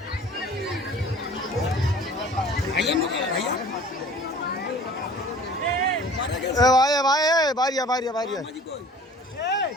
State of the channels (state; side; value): normal; both; correlation 0.46